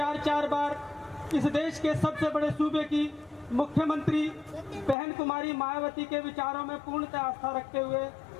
बार इस देश के सबसे बड़े सूबे की मुख्यमंत्री बहन कुमारी मायावती के विचारों में पूर्णतः आस्था रखते हुए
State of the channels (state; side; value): drops out; right; at 5.0 s